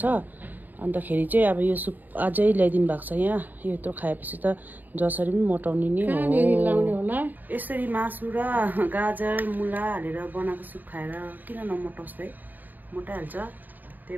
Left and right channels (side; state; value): left; late; 0.086 ms